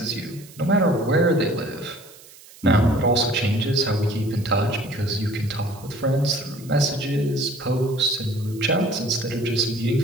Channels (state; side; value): noise; right; hiss, 22 dB below the sound